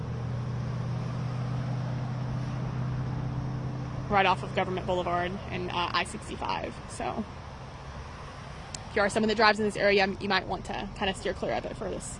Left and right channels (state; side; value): identical; both; correlation 1.00